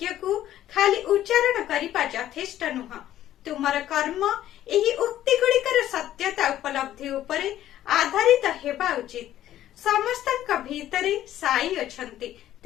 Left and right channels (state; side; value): quieter; right; 12.6 dB